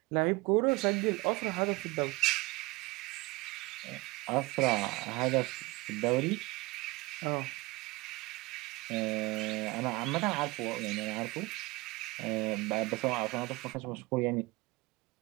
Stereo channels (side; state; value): left; quieter; 22.6 dB